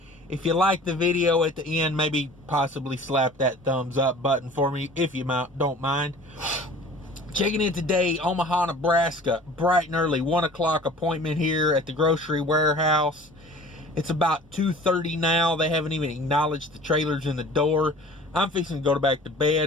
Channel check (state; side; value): normal; both; correlation 0.45